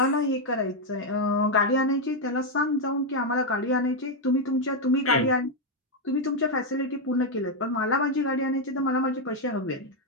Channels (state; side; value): normal; both; correlation 0.02